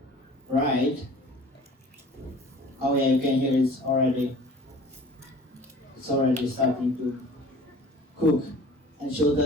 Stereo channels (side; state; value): both; normal; correlation 0.46